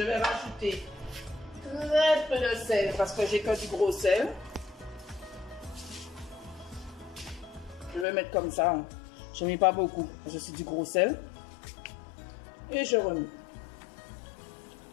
vais rajouter très peu de sel parce que j'ai que du gros sel. Je vais mettre comme ça. Je ne mets pas beaucoup. Je suis du gros sel. Et je remets.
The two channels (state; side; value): drops out; right; at 8.1 s